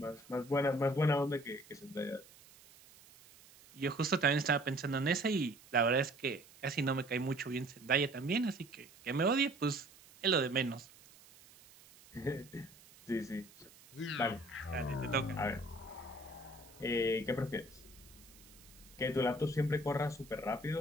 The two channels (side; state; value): right; noise; hiss, 23 dB below the sound